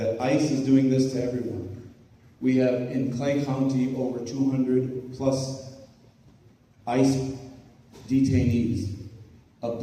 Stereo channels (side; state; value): both; identical; correlation 1.00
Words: ICE is doing this to everyone. We have in Clay County over 200 plus ICE detainees,